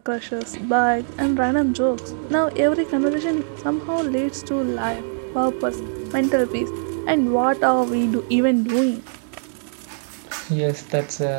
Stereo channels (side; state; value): left; silent; digital silence